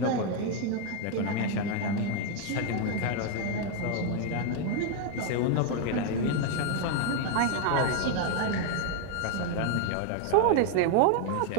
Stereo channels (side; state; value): both; different; correlation 0.00